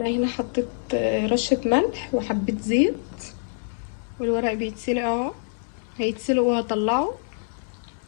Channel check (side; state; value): right; silent; digital silence